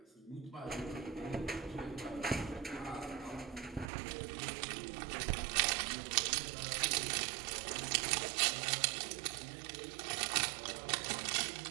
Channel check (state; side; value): drops out; left; at 3.9 s